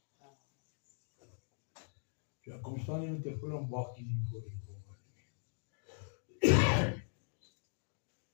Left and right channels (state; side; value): silent; right; digital silence